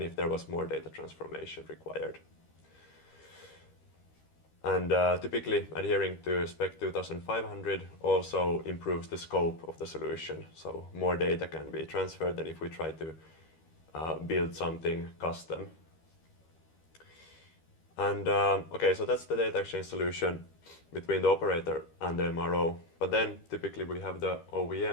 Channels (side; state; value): right; late; 13 ms